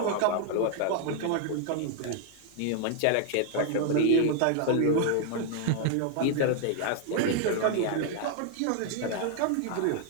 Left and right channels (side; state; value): both; different; correlation 0.00